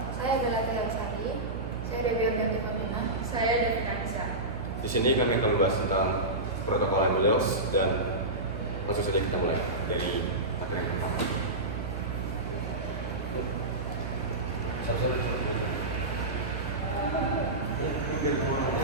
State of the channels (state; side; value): noise; right; hum, 6 dB below the sound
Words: Saya Bella Sari. Saya Dewi Ardanti Famina. Saya Devina Nisa. Di sini kami akan membahas tentang protokol and modules dan langsung saja kita mulai dari materi yang pertama.